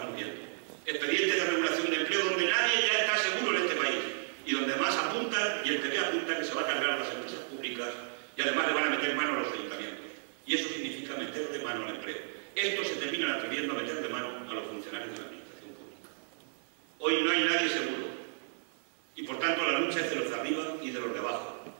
viendo. Expedientes de regulación de empleo donde nadie ya está seguro en este país. Y donde más apuntan, y el PP apunta que se va a cargar a las empresas públicas y además le van a meter mano a los ayuntamientos. Y eso significa meter de mano al empleo. Estos se terminan atreviendo a meter de mano a los funcionarios de la administración pública. Hoy no hay nadie seguro. Y por tanto la lucha es de los de arriba y de los de abajo.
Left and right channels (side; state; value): left; silent; digital silence